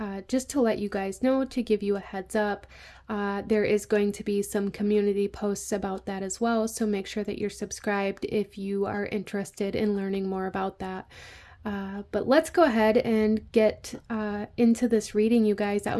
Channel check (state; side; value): identical; both; correlation 1.00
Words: Just to let you guys know, to give you a heads up, there is going to be some community posts about that as well, so make sure that you're subscribed if you are interested in learning more about that. But let's go ahead and get into this reading, you guys. Out